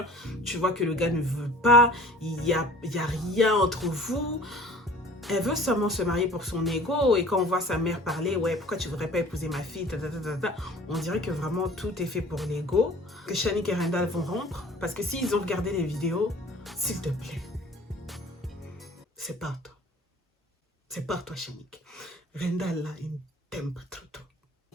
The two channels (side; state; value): both; normal; correlation 0.47